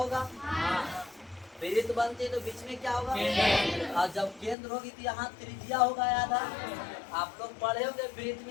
वृत्त बनती है तो बीच में क्या होगा, और जब केंद्र होगी तो यहाँ त्रिज्या होगा। याद है आप लोग पढ़े होंगे, वृत्त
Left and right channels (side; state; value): right; drops out; at 4.5 s